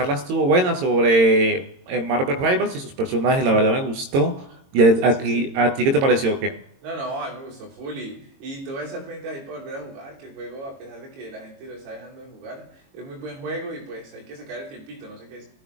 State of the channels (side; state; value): left; late; 22 ms